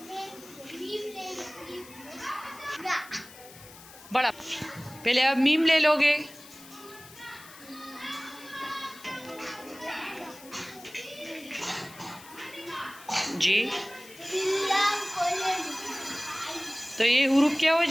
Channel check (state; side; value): noise; left; hiss, 19 dB below the sound